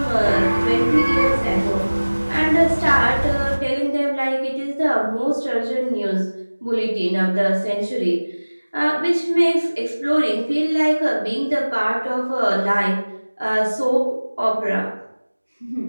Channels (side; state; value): both; inverted; correlation -1.00